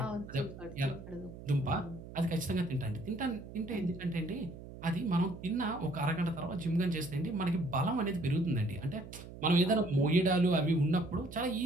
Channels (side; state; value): right; noise; hum, 14 dB below the sound